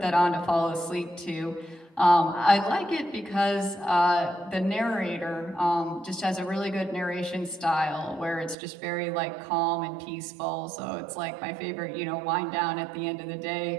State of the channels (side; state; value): left; drops out; at 8.6 s